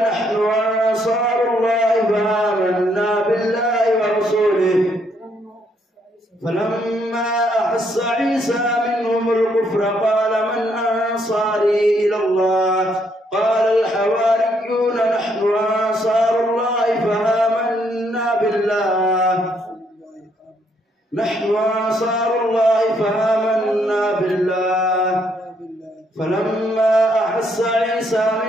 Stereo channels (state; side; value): normal; both; correlation 0.72